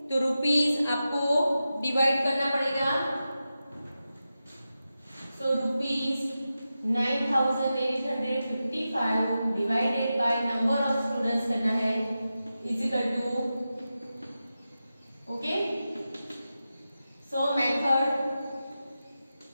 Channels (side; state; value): both; inverted; correlation -0.92